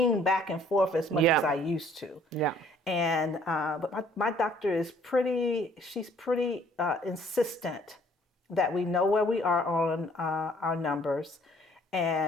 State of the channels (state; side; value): normal; both; correlation 0.60